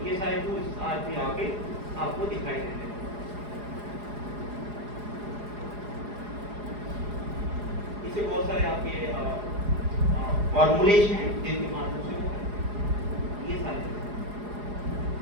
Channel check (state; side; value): late; left; 4.8 ms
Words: ये सारे टूल्स आज भी आगे आपको दिखाई देते हैं। इससे बहुत सारे आपके फॉर्मूलेज हैं जिनके माध्यम से वो ये सारे,